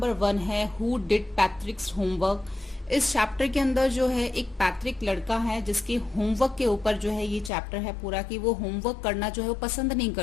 1 है हु डिड पैट्रिक्स होमवर्क। इस चैप्टर के अंदर जो है एक पैट्रिक लड़का है जिसके होमवर्क के ऊपर जो है ये चैप्टर है पूरा कि वो होमवर्क करना जो है वो पसंद नहीं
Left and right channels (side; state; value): right; drops out; at 7.5 s